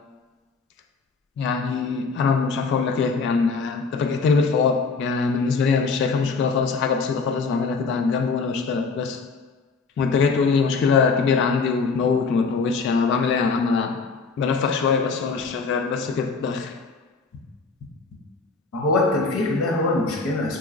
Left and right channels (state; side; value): quieter; right; 4.5 dB